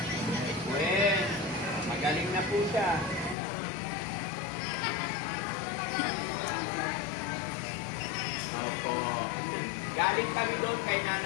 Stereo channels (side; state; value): right; drops out; at 3.4 s